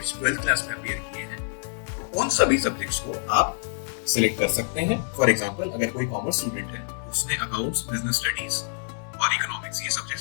12th क्लास में अपीयर किए हैं, तो उन सभी सब्जेक्ट्स को आप सिलेक्ट कर सकते हैं। फॉर एग्जांपल अगर कोई कॉमर्स स्टूडेंट है, उसने अकाउंट्स, बिजनेस स्टडीज और इकोनॉमिक्स ये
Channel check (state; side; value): silent; right; digital silence